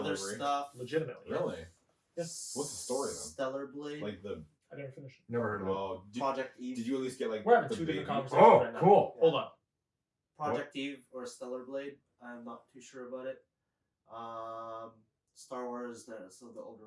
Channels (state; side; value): identical; both; correlation 1.00